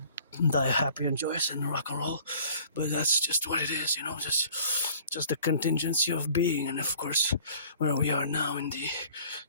die happy and joyous and rock and roll. But that's just what it is, just the contingency of being. And of course, where we are now in the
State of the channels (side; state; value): both; inverted; correlation -0.52